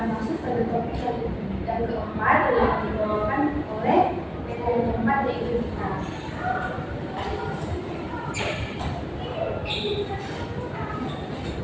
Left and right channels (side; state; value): both; identical; correlation 1.00